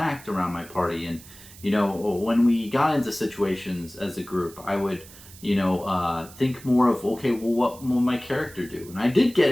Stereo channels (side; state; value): right; noise; hiss, 20 dB below the sound